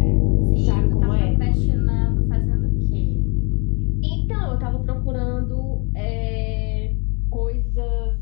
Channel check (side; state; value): right; quieter; 33.7 dB